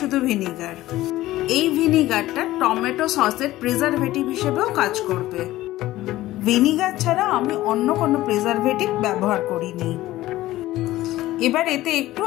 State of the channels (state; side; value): quieter; right; 16.1 dB